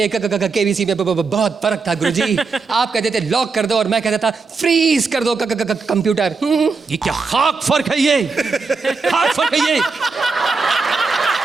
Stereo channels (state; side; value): quieter; left; 4.5 dB